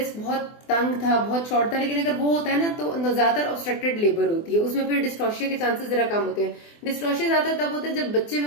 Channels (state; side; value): late; right; 24 ms